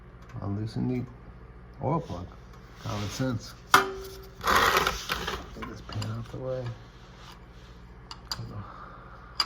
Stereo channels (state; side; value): identical; both; correlation 1.00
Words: unloosen the oil plug. Common sense. Get this pan out the way.